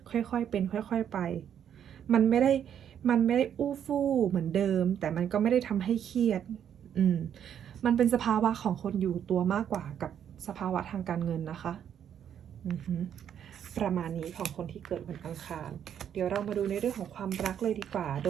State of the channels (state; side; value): quieter; left; 9.1 dB